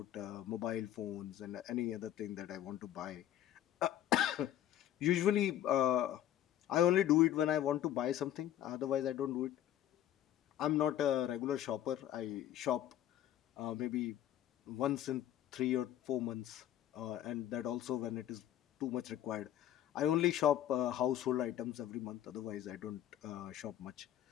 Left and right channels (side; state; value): right; quieter; 11.8 dB